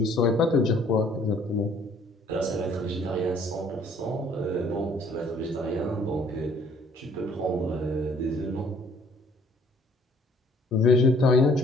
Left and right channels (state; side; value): normal; both; correlation 0.59